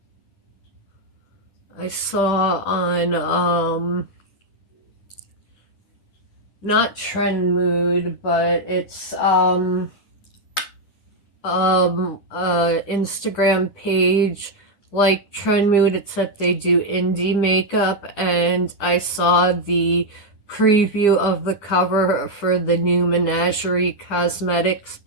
I saw on not Trend Mood, but it's Instagram page like Trend Mood, except they do indie makeup, and I saw the preview of the cover for the new Menagerie Cosmetics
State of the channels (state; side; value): late; right; 11 ms